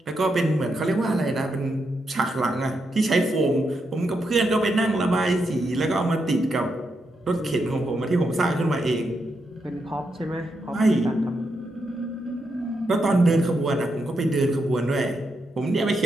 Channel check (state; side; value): normal; both; correlation 0.83